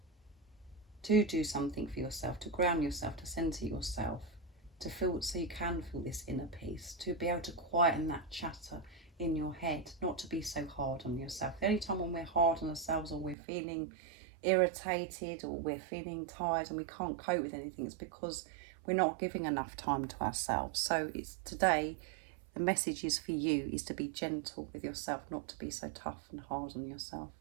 to do something for yourself, to ground yourself, to centre yourself, to feel, so you can feel this inner peace, to be able to quieten that chatter in your head, not to be so hard on yourself. The only time when we're hard on ourselves, or we're feeling irritated, or we're feeling tired and we can't cope with anything, it's because we're not giving enough time to ourselves. So it's today, the message is for you, is to be gentle with yourself, not to be so tough and hard on yourself.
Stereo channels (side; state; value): left; drops out; at 13.4 s